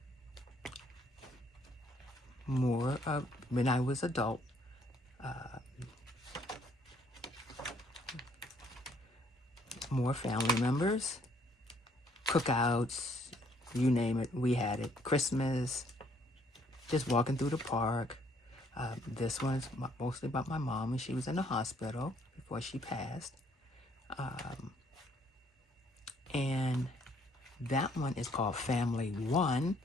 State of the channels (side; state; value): both; normal; correlation 0.65